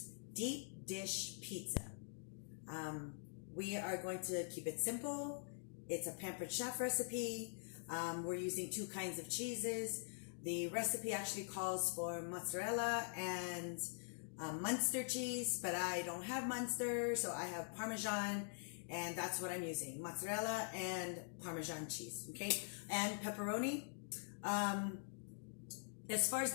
deep dish pizza. We are going to keep it simple. It's a Pampered Chef recipe. We're using two kinds of cheeses. The recipe actually calls for mozzarella and Munster cheese, but I don't have Munster, so I have Parmesan, and that's what I'm using, mozzarella and Parmesan cheese, okay? And pepperoni. As far as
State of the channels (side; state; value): right; silent; digital silence